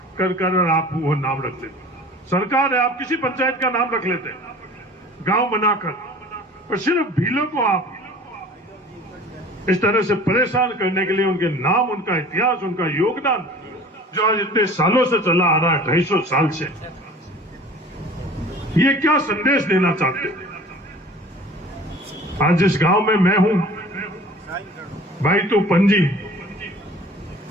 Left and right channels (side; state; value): both; normal; correlation 0.45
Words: कर कर और आप वो नाम रख लेते। सरकार है, आप किसी पंचायत का नाम रख लेते गांव बनाकर, और सिर्फ भीलों को आप इस तरह से परेशान करने के लिए उनके नाम, उनका इतिहास, उनका योगदान जो आज इतने सालों से चला आ रहा है, 250 साल से, ये क्या संदेश देना चाहते हैं? आज जिस गांव में मैं हूं, भाई तो पंजी,